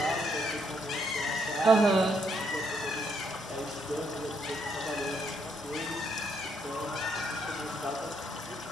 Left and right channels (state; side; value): normal; both; correlation 0.74